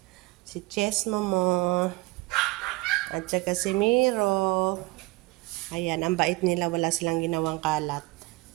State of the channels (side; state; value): left; quieter; 22.7 dB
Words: Si Chess Momo. At saka si Miro. Ayan, ang bait nila. Wala silang ginawang kalat.